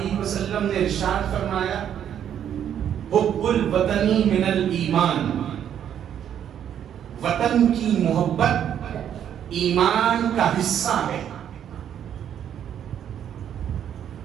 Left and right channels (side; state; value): left; quieter; 9.5 dB